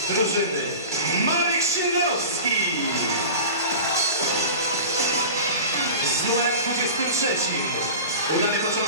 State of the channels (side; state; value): both; inverted; correlation -0.34